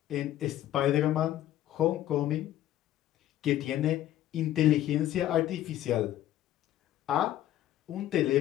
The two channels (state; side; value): quieter; right; 13.0 dB